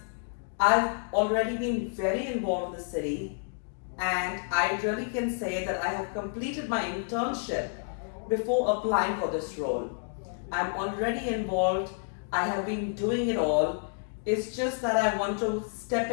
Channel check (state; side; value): silent; right; 58 dB below the other